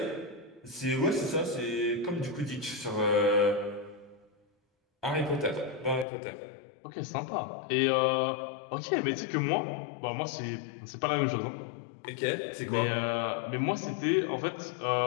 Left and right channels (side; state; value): right; drops out; at 6.1 s